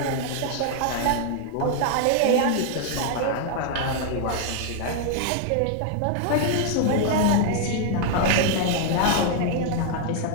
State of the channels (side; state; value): both; different; correlation 0.00